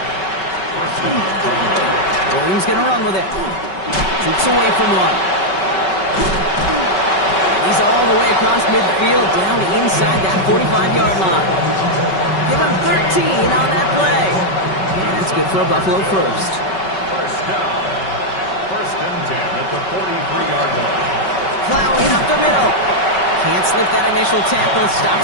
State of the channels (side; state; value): right; late; 5.3 ms